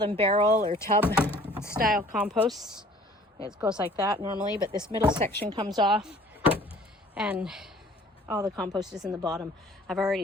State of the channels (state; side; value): normal; both; correlation 0.52